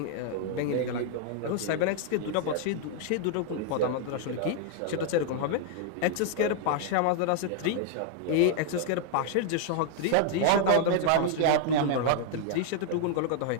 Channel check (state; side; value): different; both; correlation 0.00